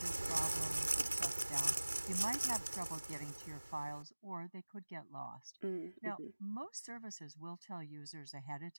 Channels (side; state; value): both; inverted; correlation -1.00